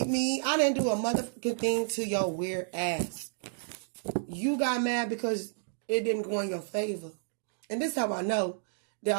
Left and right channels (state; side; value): silent; left; digital silence